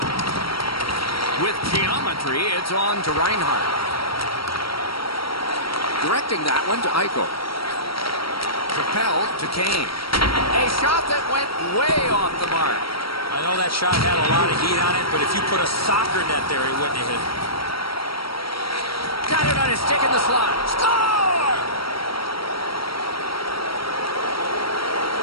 With geometry, it's on to Reinhart. Directing that one to Eichel. Propelled to Kane. A shot that went way off the mark. I know that shot had a lot of heat on it, but if you put a soccer net there, he wouldn't have hit it. Got it on his stick in the slot. Score!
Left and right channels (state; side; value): late; right; 0.75 ms